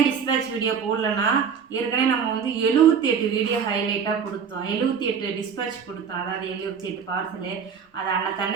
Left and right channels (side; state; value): left; quieter; 6.8 dB